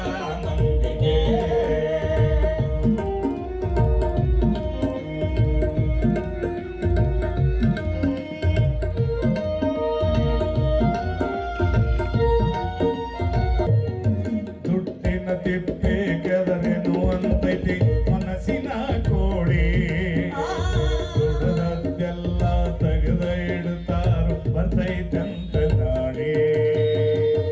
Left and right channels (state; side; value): identical; both; correlation 1.00